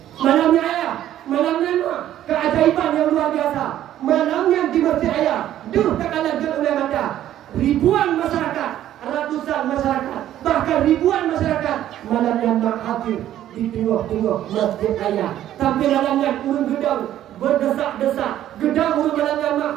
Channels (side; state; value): left; quieter; 12.2 dB